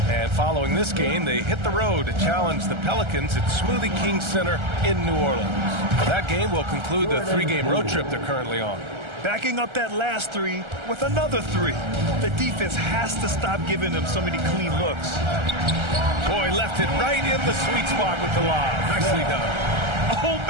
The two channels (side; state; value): left; late; 1.3 ms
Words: And following this game, they hit the road to challenge the Pelicans at Smoothie King Center in New Orleans. That game will conclude the 3-game road trip they're currently on. Backing up that last 3 with another 3. The defense has to stop giving them so many clean looks. Boy, left it right in the sweet spot with the lob. Nicely done. Oh,